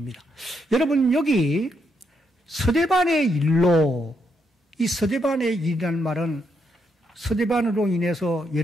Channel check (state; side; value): normal; both; correlation 0.78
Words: 여러분 여기 스데반의 일로 이 스데반의 일이라는 말은 스데반으로 인해서